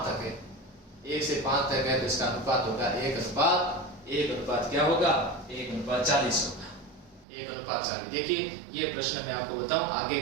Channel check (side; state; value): left; drops out; at 7.2 s